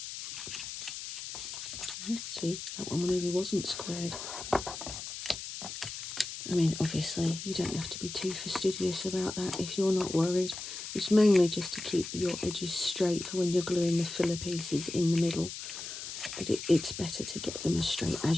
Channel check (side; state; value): left; noise; hiss, 8 dB below the sound